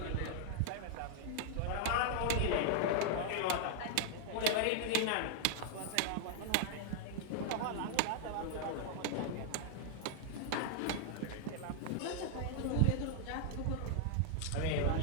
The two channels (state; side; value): different; both; correlation 0.00